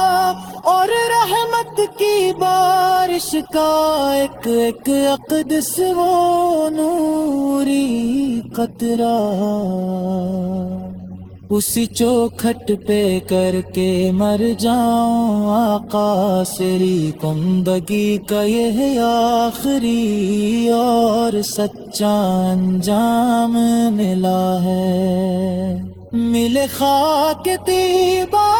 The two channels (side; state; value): both; identical; correlation 1.00